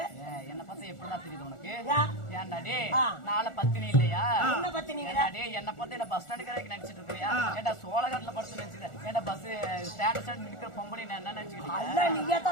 என்ன பார்த்தா எப்படிதான் தெரியுது உனக்கு? ஏன்டாடே நாளை பத்தினி இல்லையா? என்ன பத்தினி? என்ன பார்த்து என்ன பஸ் ஸ்டாண்டு கடைக்கு நினைச்சிட்டு இருக்கியா? ஏன்டா சோழகட்டில படுத்து நினைச்சுக்க? ஏன்டா பஸ் ஸ்டாண்ட் ஸ்டாண்ட் நிக்கிற பொம்பளை என்ன நினைச்சுக்கிட்டு? நீயே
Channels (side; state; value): right; late; 1.4 ms